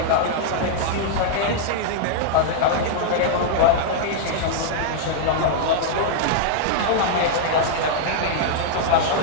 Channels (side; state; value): both; different; correlation -0.01